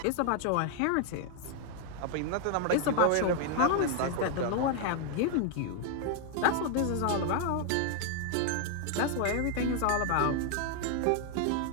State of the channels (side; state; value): both; different; correlation 0.00